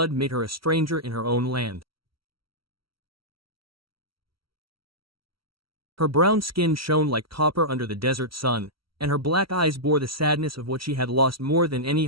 made her a stranger in her own land. Her brown skin shone like copper under the desert sun, and her black eyes bore the sadness of what she had lost more than any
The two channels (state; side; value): late; left; 0.75 ms